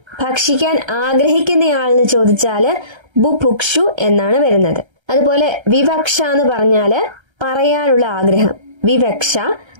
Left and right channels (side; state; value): left; late; 1.3 ms